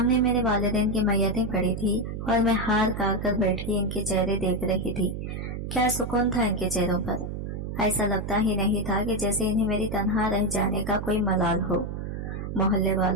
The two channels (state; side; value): noise; right; hum, 6 dB below the sound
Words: मेरे वालिदैन की मैयतें पड़ी थी और मैं हार काट कर बैठी इनके चेहरे देख रही थी। क्या सुकून था इनके चेहरों पर। ऐसा लगता ही नहीं था कि जैसे इन्हें मेरी तन्हा रह जाने का कोई मलाल हो। मोहल्ले